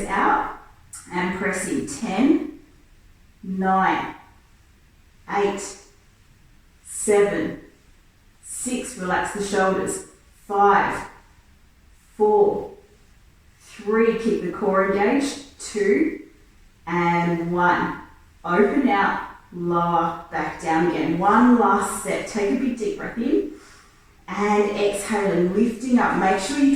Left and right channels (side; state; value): both; identical; correlation 1.00